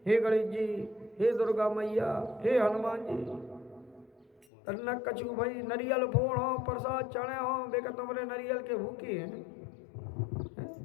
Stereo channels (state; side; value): drops out; right; at 4.5 s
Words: हे गणेश जी, हे दुर्गा मैया, हे हनुमान जी, तरना कछु भाई नरियल फोड़ हो, प्रसाद चढ़े हो, बेका तुम्हारे नरियल के भूखे हैं,